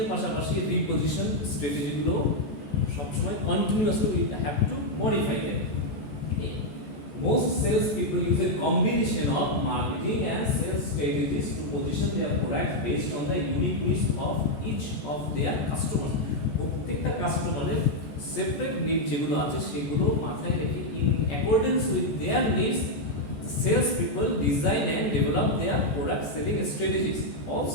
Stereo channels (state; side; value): late; right; 14 ms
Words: এর পাশাপাশি রিপোজিশন স্ট্র্যাটেজি গুলো সবসময় continuously we have to modify them. Most sales people use a combination of marketing and sales strategies to position their products based on the unique needs of each of their customers. প্রত্যেকটা কাস্টমারের separate need যেগুলো আছে সেগুলো মাথায় রেখে in accordance with their needs, sales people design and develop their product selling strategies,